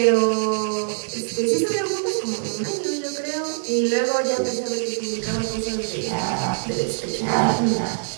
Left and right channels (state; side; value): silent; left; digital silence